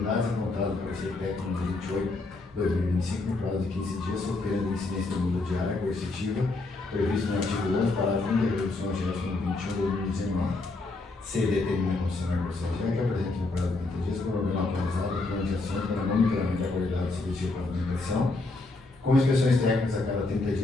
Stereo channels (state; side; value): quieter; right; 3.3 dB